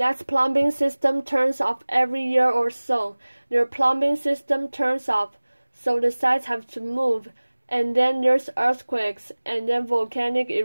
plumbing system turns off every year or so. Their plumbing system turns off, so the sites have to move. And then there's earthquakes, and then volcanic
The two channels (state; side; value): inverted; both; correlation -1.00